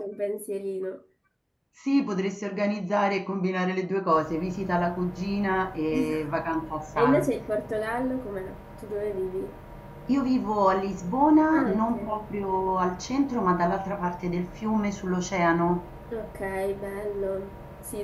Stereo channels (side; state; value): both; identical; correlation 1.00